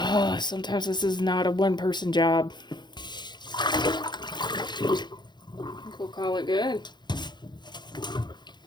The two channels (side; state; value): right; late; 0.21 ms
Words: sometimes this is not a one-person job. I think we'll call it good.